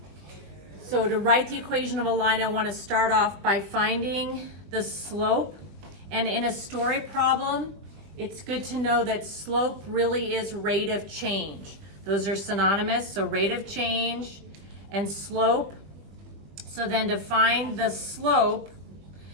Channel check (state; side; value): late; left; 20 ms